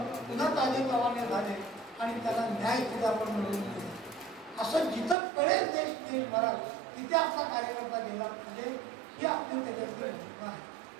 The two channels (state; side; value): drops out; left; at 5.2 s